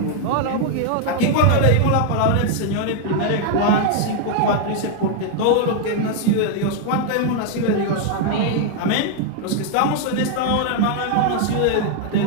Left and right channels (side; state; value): both; different; correlation 0.00